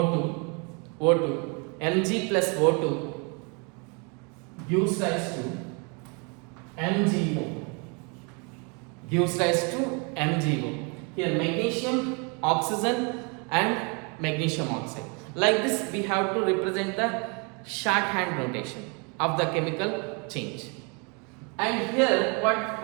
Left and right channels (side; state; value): left; quieter; 33.7 dB